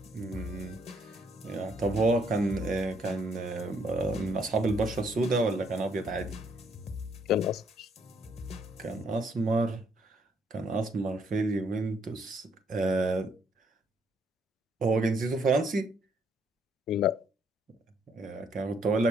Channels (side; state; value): both; normal; correlation 0.69